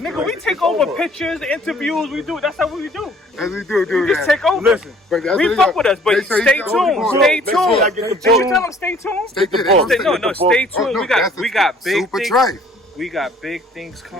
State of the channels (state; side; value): normal; both; correlation 0.56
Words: we take over pictures, interviews. We do. That's how we do. As we do. We just take over. Listen, we fuck with us, but stay tuned. Stay tuned. Did you tell them stay tuned? Stay tuned. We got big things. We got big things